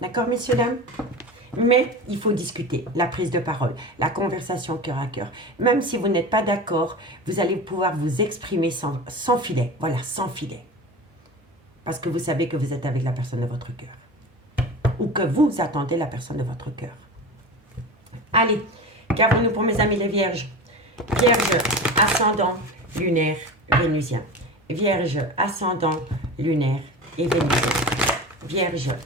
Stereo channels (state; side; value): normal; both; correlation 0.30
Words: D'accord, messieurs, dames? Mais il faut discuter, la prise de parole, la conversation cœur à cœur. Même si vous n'êtes pas d'accord, vous allez pouvoir vous exprimer sans filet. Voilà, sans filet. Parce que vous savez que vous êtes avec la personne de votre cœur. Ou que vous attendez la personne de votre cœur. Allez, qu'avons-nous pour mes amis les vierges? Vierge, ascendant, lunaire, vénusien. Vierge, ascendant, lunaire et vénusien. Vierge,